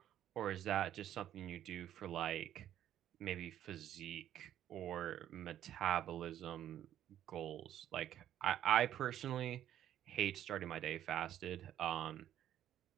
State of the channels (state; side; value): quieter; left; 11.4 dB